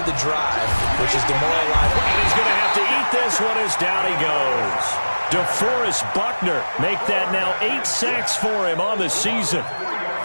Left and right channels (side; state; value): both; inverted; correlation -1.00